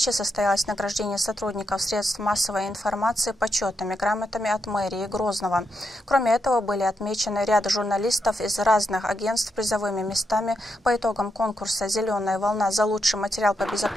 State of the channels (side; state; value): both; normal; correlation 0.83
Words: состоялось награждение сотрудников средств массовой информации почетными грамотами от мэрии Грозного. Кроме этого, были отмечены ряд журналистов из разных агентств призовыми местами по итогам конкурса «Зеленая волна» за лучший материал по